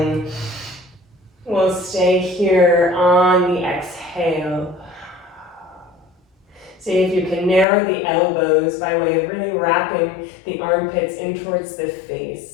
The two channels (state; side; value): drops out; right; at 7.7 s